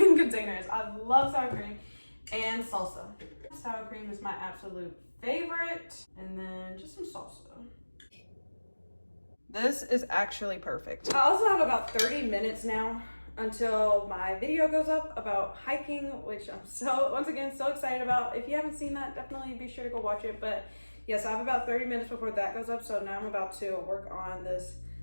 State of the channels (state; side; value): inverted; both; correlation -1.00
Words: container is. I love sour cream and salsa. Sour cream is my absolute favorite. And then just some salsa. This is actually perfect. I also have about 30 minutes now until my video goes up about hiking, which I'm once again so excited about. If you haven't seen that, definitely be sure to go watch it. But yes, I have about 30 minutes before that goes up. So now I'm about to work on this